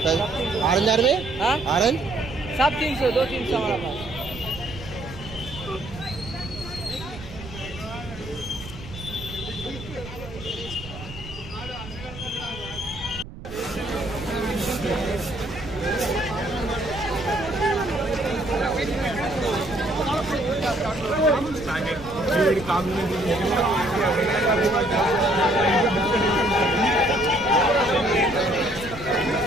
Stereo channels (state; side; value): noise; right; rumble, 14 dB below the sound